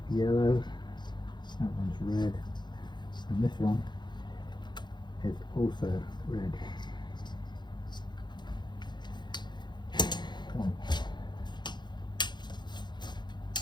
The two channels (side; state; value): right; late; 0.21 ms